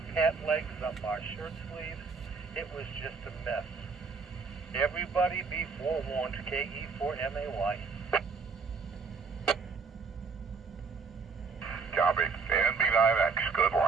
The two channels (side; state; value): left; quieter; 4.8 dB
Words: legs, up our shirt sleeves. It was just a mess. Everybody be forewarned, KE4MAY. Copy. And B9X, good